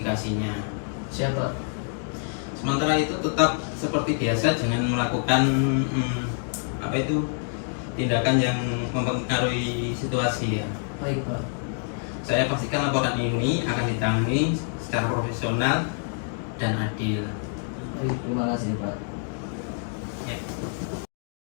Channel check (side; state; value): right; silent; 58 dB below the other